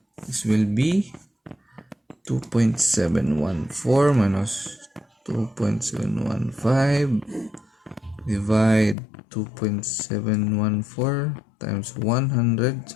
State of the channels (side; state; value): right; drops out; at 9.0 s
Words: this will be 2.714 minus 2.715 divide 2.714 times 100.